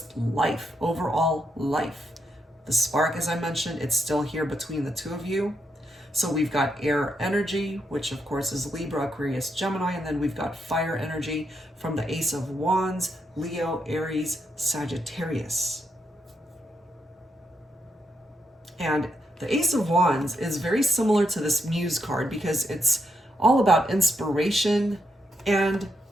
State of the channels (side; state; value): both; normal; correlation 0.81